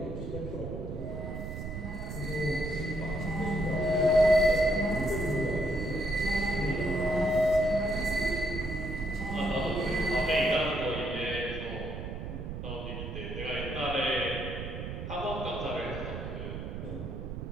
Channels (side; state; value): right; noise; rumble, 7 dB below the sound